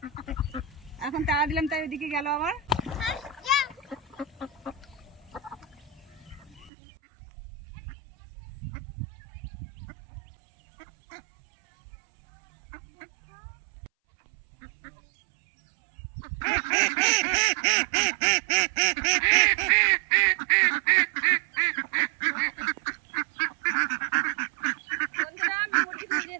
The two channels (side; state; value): left; drops out; at 6.7 s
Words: এখন তাড়া দিলাম, তাই ওদিকে গেল আবার।